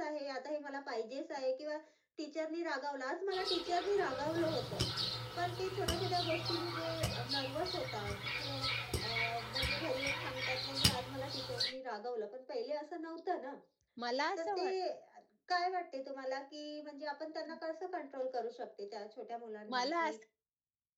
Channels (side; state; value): both; identical; correlation 1.00